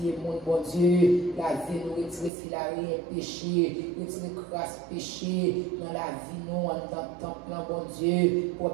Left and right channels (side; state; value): left; drops out; at 2.3 s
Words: mon Dieu, la vie, nous retirer filaré, péché, retirer grâce, péché, dans la vie, nous, en tant que temple, bon Dieu,